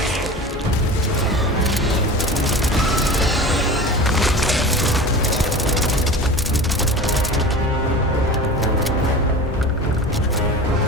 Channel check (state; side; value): normal; both; correlation 0.34